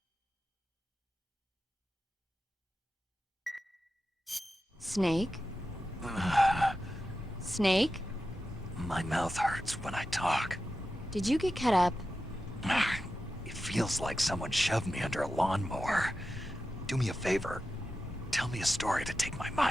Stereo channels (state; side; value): normal; both; correlation 0.91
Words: Snake? Snake? My mouth hurts when I talk. Did you get cut up? It feels like someone shoved me under a lawnmower. Do me a favor. Tell me a story to take my